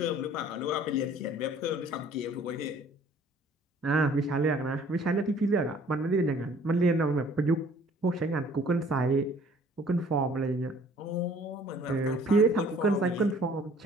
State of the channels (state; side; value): normal; both; correlation 0.55